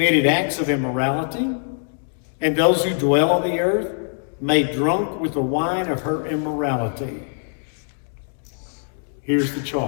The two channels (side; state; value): right; silent; digital silence